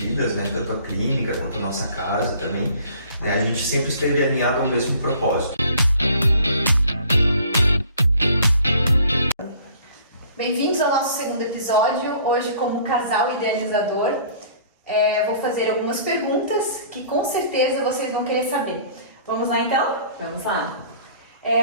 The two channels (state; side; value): inverted; both; correlation -0.52